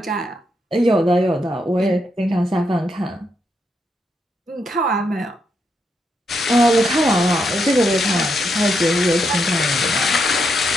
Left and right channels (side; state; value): both; normal; correlation 0.80